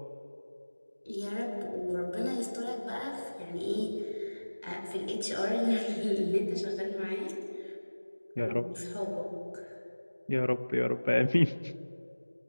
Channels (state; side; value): inverted; both; correlation -1.00